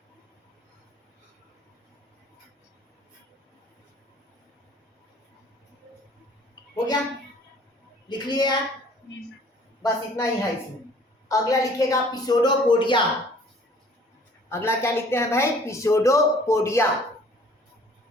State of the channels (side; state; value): both; normal; correlation 0.54